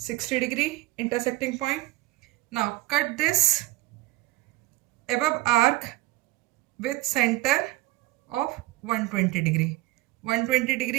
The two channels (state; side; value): quieter; left; 19.0 dB